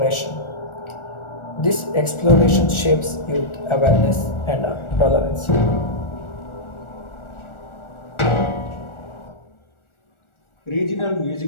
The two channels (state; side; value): late; right; 1.4 ms